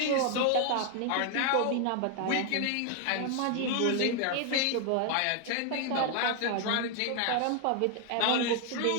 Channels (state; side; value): different; both; correlation 0.00